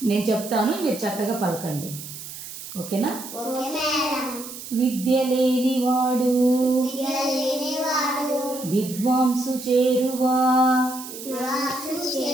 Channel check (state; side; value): noise; right; hiss, 12 dB below the sound